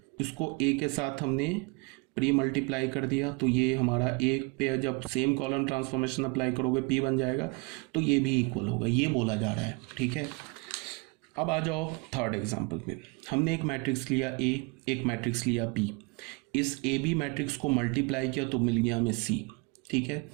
इसको ए के साथ हमने प्री मल्टीप्लाई कर दिया, तो ये हमारा ए पे जब सेम कॉलम ट्रांसफॉर्मेशन अप्लाई करोगे पी बन जाएगा, तो ये भी इक्वल होगा, ये बोला जा रहा है। ठीक है, अब आ जाओ थर्ड एग्जांपल में। हमने एक मैट्रिक्स लिया ए, एक मैट्रिक्स लिया पी, इस ए बी मैट्रिक्स को मल्टीप्लाई किया तो मिल गया हमें सी। ठीक है,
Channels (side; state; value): left; quieter; 29.6 dB